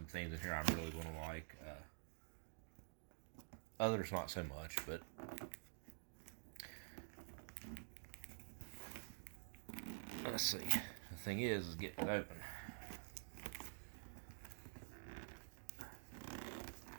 things in here I'm really gonna like. Others not so much, but let's see. The thing is getting it open.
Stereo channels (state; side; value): silent; left; digital silence